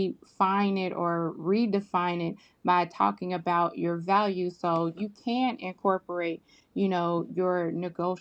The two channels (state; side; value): identical; both; correlation 1.00